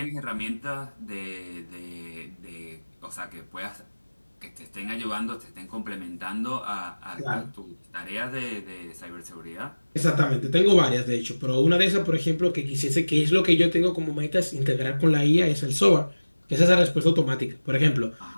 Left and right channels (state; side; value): inverted; both; correlation -1.00